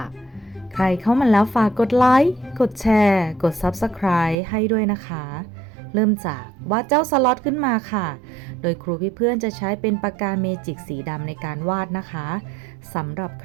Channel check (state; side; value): drops out; left; at 4.4 s